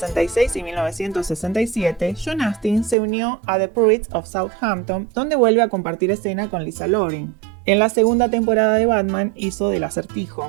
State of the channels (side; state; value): left; drops out; at 3.0 s